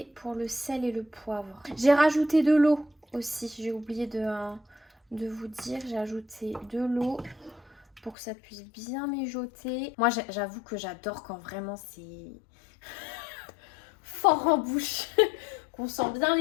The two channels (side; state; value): right; drops out; at 8.2 s